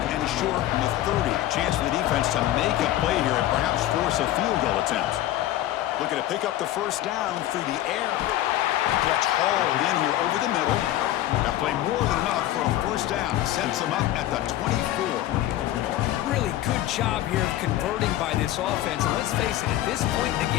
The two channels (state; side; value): quieter; right; 14.0 dB